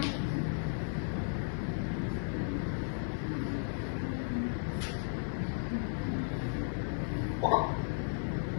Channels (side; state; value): right; silent; digital silence